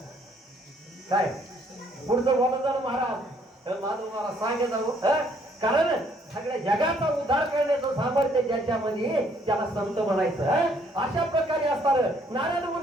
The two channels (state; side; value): normal; both; correlation 0.65